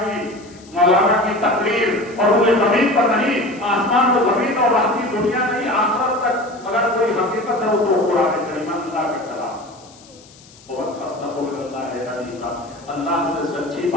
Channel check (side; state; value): left; noise; hiss, 24 dB below the sound